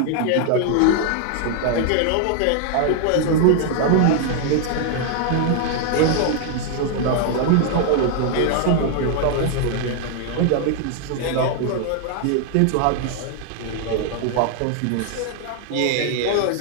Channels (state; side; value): different; both; correlation 0.00